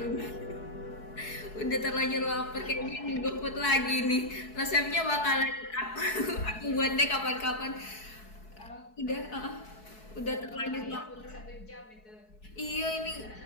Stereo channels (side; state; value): right; late; 4.7 ms